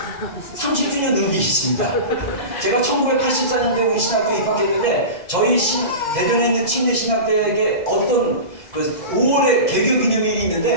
30주년 의미 있습니다. 제가 1984년도에 우리 신학교에 입학했는데, 저희 대전에 있는 침례신학대에 어떤 5월에 개교 기념일이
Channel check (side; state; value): right; late; 2.0 ms